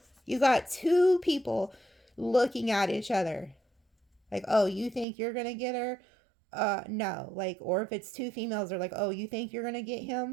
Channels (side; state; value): left; drops out; at 5.1 s